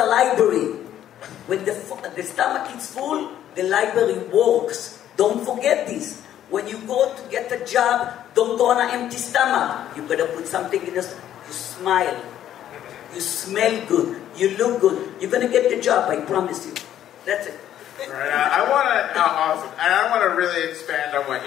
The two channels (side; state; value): right; quieter; 11.3 dB